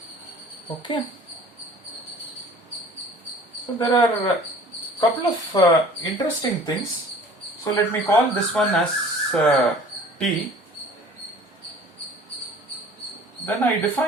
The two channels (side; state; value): both; normal; correlation 0.47